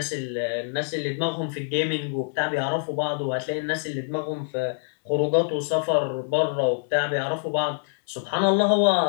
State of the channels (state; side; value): silent; right; digital silence